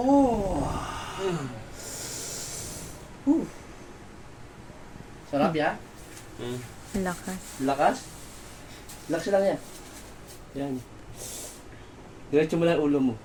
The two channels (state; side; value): identical; both; correlation 1.00